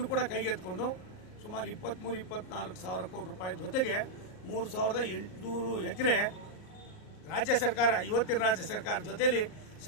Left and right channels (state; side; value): late; right; 38 ms